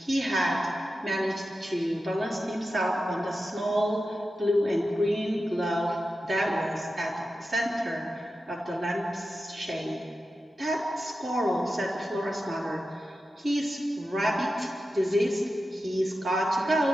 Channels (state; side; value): normal; both; correlation 0.92